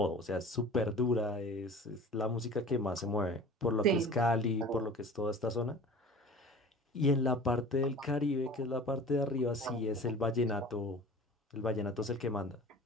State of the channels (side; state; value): both; normal; correlation 0.41